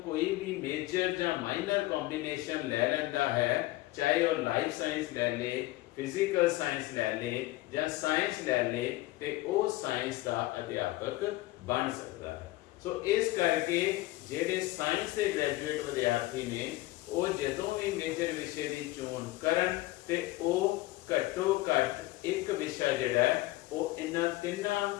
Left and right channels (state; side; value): quieter; right; 18.4 dB